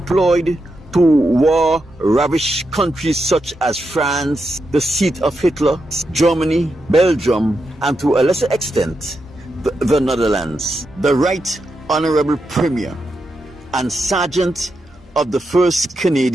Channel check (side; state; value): both; normal; correlation 0.85